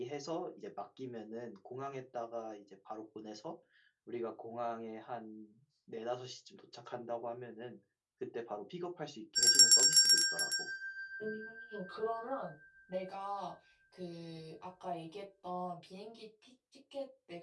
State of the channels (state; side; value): identical; both; correlation 1.00